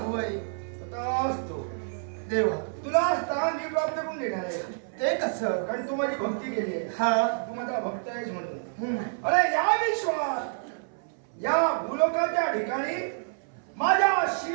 तथास्तु. देवा तुला स्थान मी प्राप्त करून देणार आहे, ते कसं? कारण तू माझी भक्ती केली आहे. हा तू माझा भक्त आहेस म्हणून. हम्म. अरे या विश्वात या भूलोकाच्या ठिकाणी माझ्या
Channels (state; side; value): silent; left; 58 dB below the other